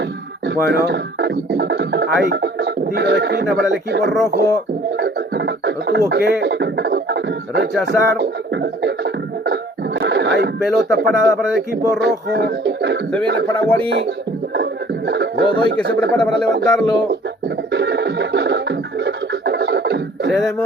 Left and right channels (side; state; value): both; normal; correlation 0.53